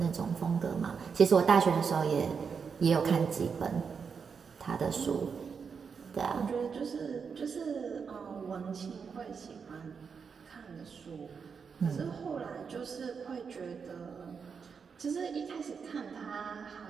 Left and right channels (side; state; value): left; quieter; 6.0 dB